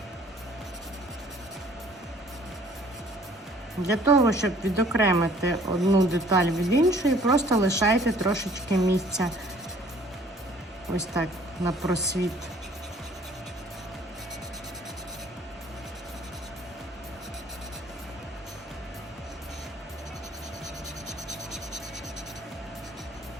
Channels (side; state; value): both; normal; correlation 0.56